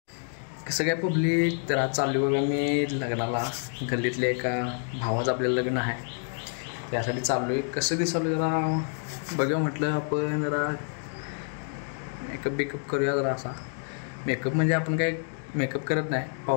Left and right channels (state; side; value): silent; right; 59 dB below the other